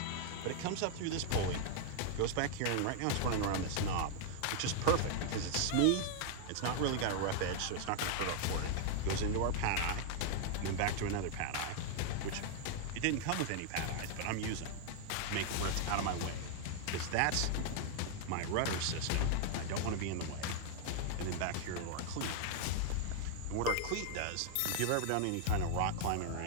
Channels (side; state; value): both; different; correlation 0.00